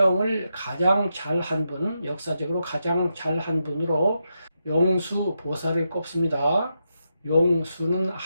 가장 잘한 분, 역사적으로 가장 잘한 분으로 용수보살을 꼽습니다. 용수는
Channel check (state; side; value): inverted; both; correlation -0.85